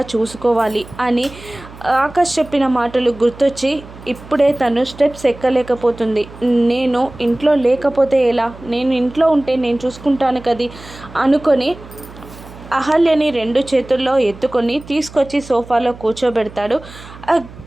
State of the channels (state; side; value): noise; right; hum, 18 dB below the sound